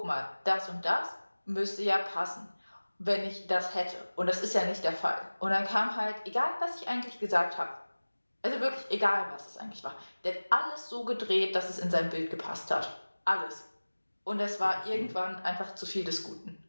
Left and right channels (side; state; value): both; inverted; correlation -1.00